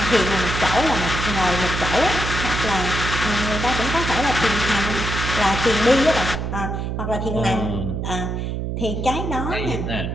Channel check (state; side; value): noise; right; hum, 3 dB below the sound